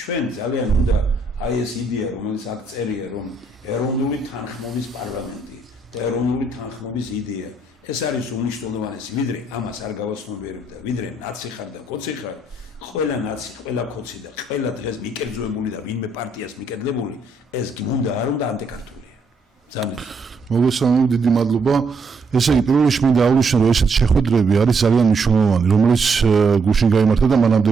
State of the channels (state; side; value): quieter; left; 3.2 dB